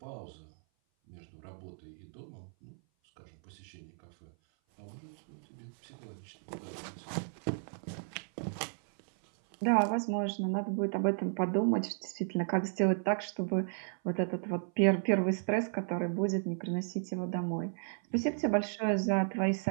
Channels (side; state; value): left; silent; 55 dB below the other